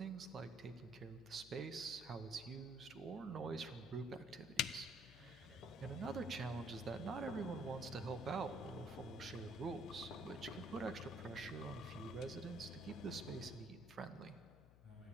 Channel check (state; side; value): noise; left; hum, 20 dB below the sound